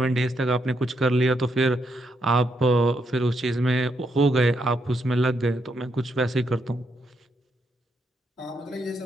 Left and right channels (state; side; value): normal; both; correlation 0.78